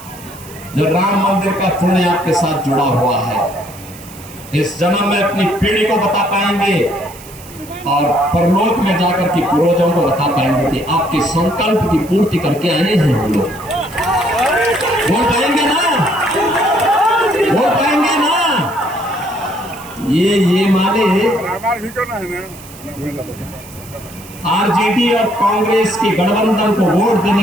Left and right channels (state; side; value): noise; right; hiss, 19 dB below the sound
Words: जो राम मंदिर का पुण्य आपके साथ जुड़ा हुआ है, इस जन्म में अपनी पीढ़ी को बता पाएंगे और परलोक में जाकर के पूर्वजों को बता पाएंगे कि आपके संकल्प की पूर्ति करके आए हैं हम लोग। बोल पाएंगे ना? बोल पाएंगे ना? ये माने आरजेडी और कांग्रेस की गठबंधन को वोट